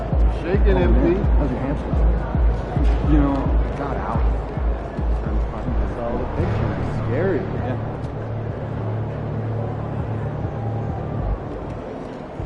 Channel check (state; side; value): identical; both; correlation 1.00